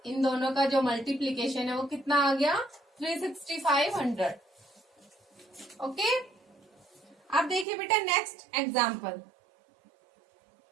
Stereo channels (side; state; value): left; drops out; at 7.7 s